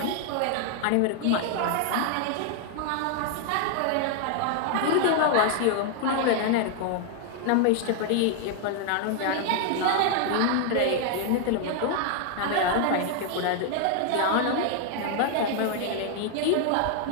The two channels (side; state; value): both; different; correlation 0.00